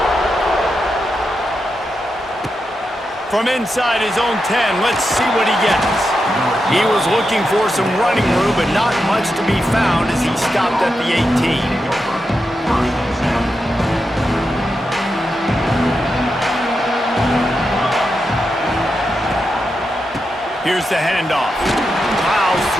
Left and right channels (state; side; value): normal; both; correlation 0.87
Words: From inside his own 10, let's see what he gets. He was looking for some running room, but not much to be found as he stopped at the 18. Here's the handoff. Plows